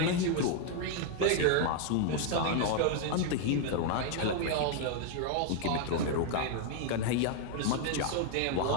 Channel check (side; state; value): both; different; correlation 0.00